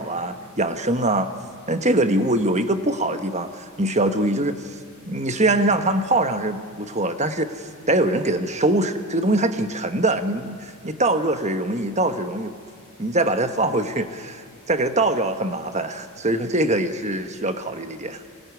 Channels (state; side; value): normal; both; correlation 0.27